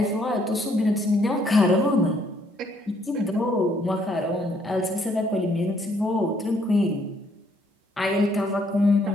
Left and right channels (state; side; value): normal; both; correlation 0.68